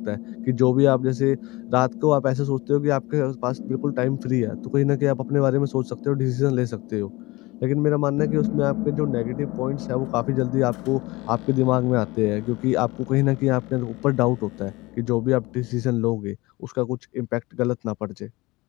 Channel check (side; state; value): right; quieter; 21.9 dB